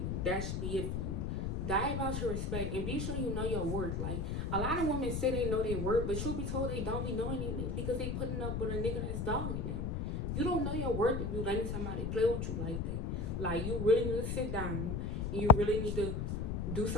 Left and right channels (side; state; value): left; noise; rumble, 1 dB below the sound